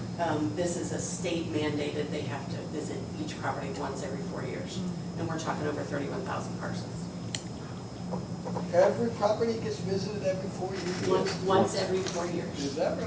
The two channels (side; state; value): both; identical; correlation 1.00